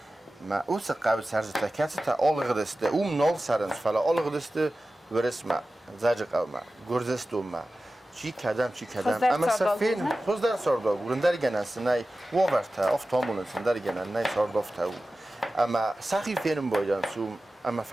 ما اوس قابل سرزته کسی تا آلق دسته نال سرنس فلا آلق دسته ورس ما زاج قوم گرزستو ما چی کدام اما سفین خوز در سردا گرندر گناس نای وورتا افتامون سندر گنان نای سردافتا اما سخی فینم بایدن سوم اما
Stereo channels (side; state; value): both; normal; correlation 0.95